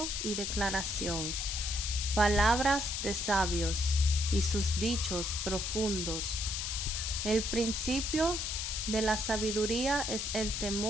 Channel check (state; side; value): noise; left; hiss, 2 dB below the sound